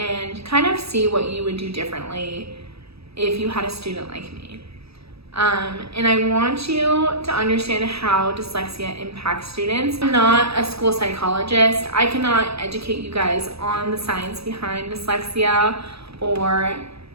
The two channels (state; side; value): late; left; 0.77 ms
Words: kind of see what you would do differently if you had a student like me. And I want you to understand how dyslexia impacts students. I'm not a school psychologist. I cannot educate you guys on the science behind dyslexia or